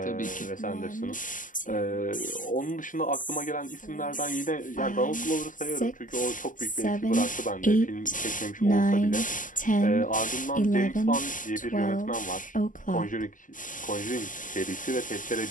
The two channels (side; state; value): right; late; 0.38 ms